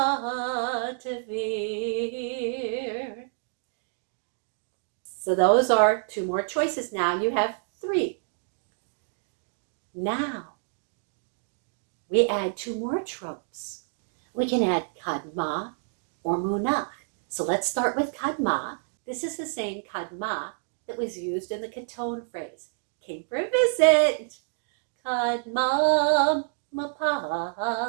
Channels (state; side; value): silent; left; digital silence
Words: Tevir. So those are 2 more choices. Now you have 3. Now we add 2 more tropes. We can add Kadma or Munach. So let's start with Kadma. This is the same Kadma that was used in the Katon phrase. Came for a visit. Kadma